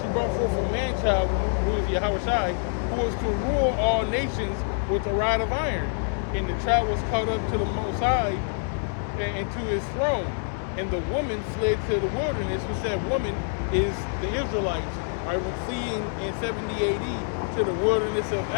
brought forth a man-child, who is Yahushai, who was to rule all nations with a rod of iron. And the child was caught up to the Most High and to his throne. And the woman fled to the wilderness," which that woman is the Israelites. All right, we're fleeing in 70 AD to the wilderness of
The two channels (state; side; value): silent; right; digital silence